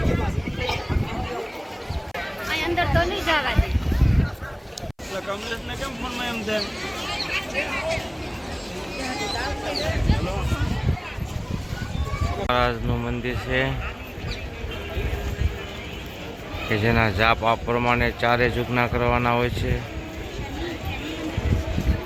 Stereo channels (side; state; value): both; identical; correlation 1.00